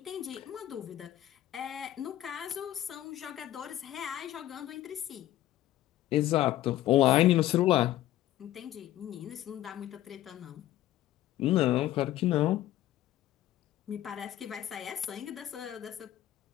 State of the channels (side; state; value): right; quieter; 13.9 dB